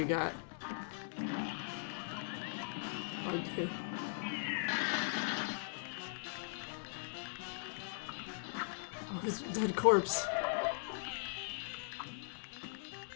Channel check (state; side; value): silent; right; digital silence